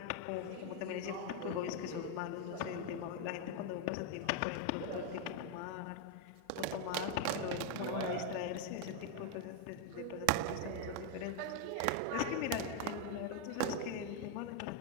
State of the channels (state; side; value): different; both; correlation 0.01